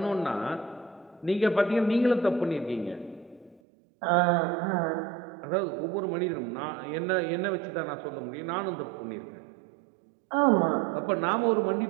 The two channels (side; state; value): left; drops out; at 3.6 s